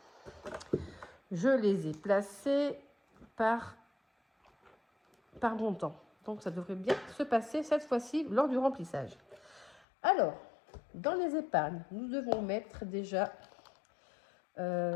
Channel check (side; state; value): right; drops out; at 9.9 s